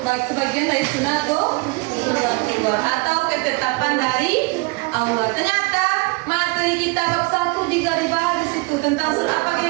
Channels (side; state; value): left; quieter; 26.5 dB